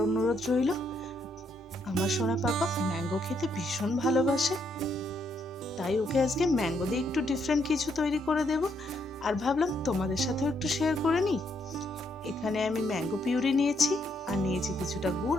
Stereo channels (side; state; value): both; normal; correlation 0.74